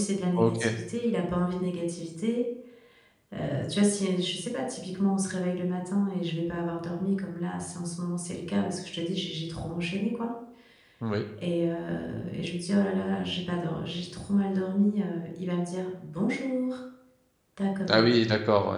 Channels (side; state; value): both; identical; correlation 1.00